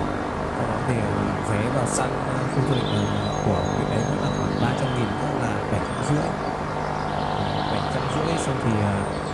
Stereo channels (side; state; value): both; identical; correlation 1.00